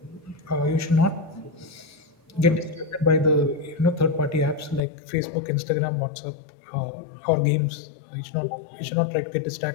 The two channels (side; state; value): right; drops out; at 4.8 s